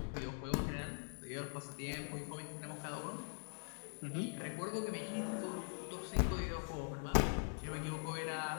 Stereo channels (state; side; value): silent; right; digital silence